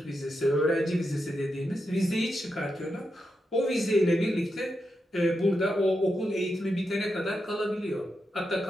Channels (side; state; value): both; normal; correlation 0.86